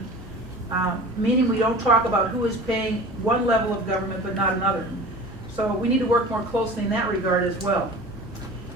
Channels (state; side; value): normal; both; correlation 0.39